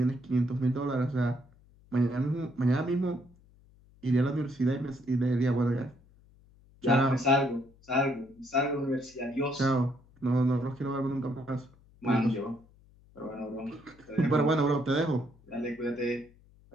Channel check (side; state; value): left; noise; hum, 28 dB below the sound